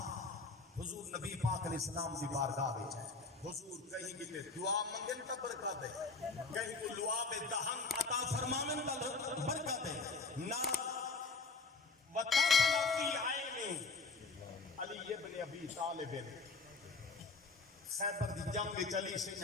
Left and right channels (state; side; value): quieter; right; 4.0 dB